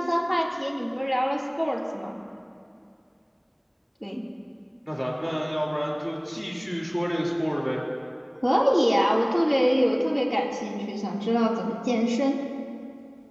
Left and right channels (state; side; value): identical; both; correlation 1.00